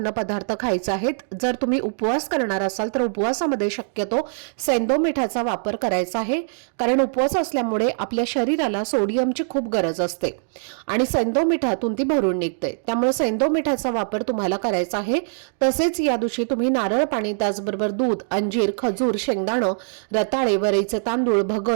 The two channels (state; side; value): silent; left; digital silence